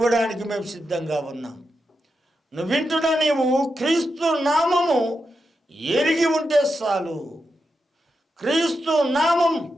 మేము సిద్ధంగా ఉన్నాం. నువ్వు వింటున్నా, నీవు క్రీస్తు నామము ఎరిగి ఉంటే చాలు, క్రీస్తు నామం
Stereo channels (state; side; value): normal; both; correlation 0.87